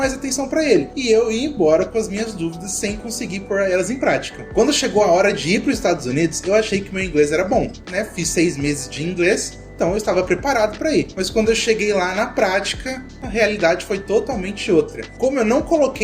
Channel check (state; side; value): identical; both; correlation 1.00